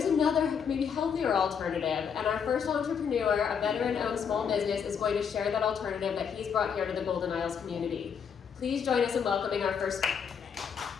another, maybe healthier alternative, and our first entrepreneur, a veteran-owned small business, is going to share that alternative that he's brought here to the Golden Isles community. Please join us in welcoming our first speaker today.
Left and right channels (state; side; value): quieter; right; 7.0 dB